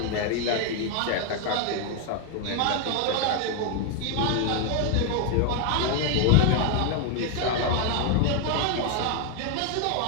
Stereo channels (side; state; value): both; different; correlation 0.01